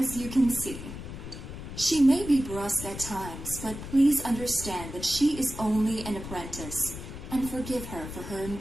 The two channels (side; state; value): left; noise; rumble, 10 dB below the sound